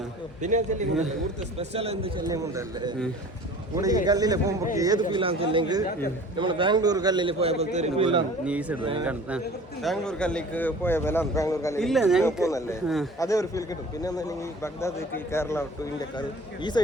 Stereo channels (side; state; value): both; normal; correlation 0.45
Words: സ്പെഷ്യൽ എന്ത് ചെല്ലുന്നുണ്ടല്ലേ ഈ കല്ലിൽ പോകുമ്പോൾ ഏത് ഫീലാന്ന് ചെല്ലെങ്കിൽ നമ്മൾ ബാംഗ്ലൂർ കല്ലിൽ പോയപ്പോൾ ബാംഗ്ലൂർ കല്ലിക്ക് പോയപ്പോൾ ബാംഗ്ലൂർ കല്ലിൽ പോകുന്നല്ലേ അതേ ഒരു ഫീൽ കിട്ടും. പിന്നെ ബഗ്ദാദ് കേരള ടു ഇന്ത്യക്കാർ ഈ